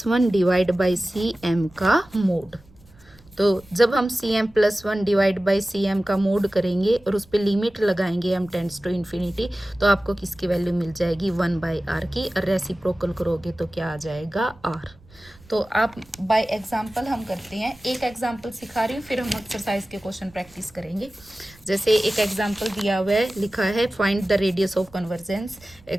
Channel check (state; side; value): noise; right; rumble, 26 dB below the sound